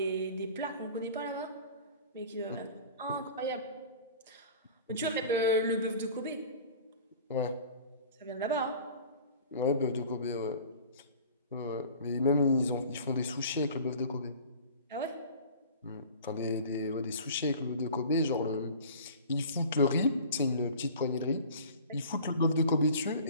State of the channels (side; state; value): both; inverted; correlation -0.43